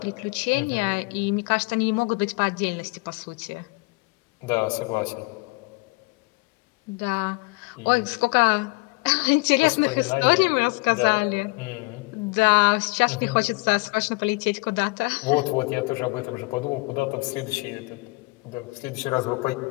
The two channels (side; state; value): right; quieter; 26.4 dB